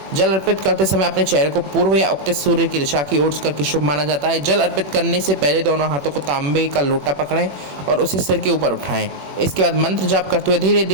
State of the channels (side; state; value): left; late; 21 ms